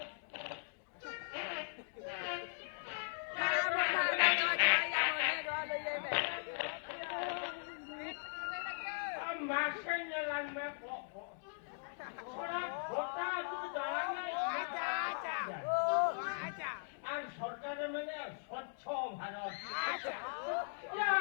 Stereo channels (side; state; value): right; silent; digital silence